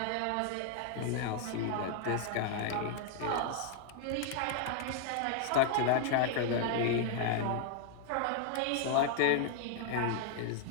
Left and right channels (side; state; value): both; different; correlation -0.01